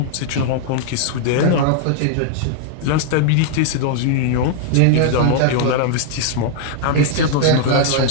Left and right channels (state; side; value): different; both; correlation 0.00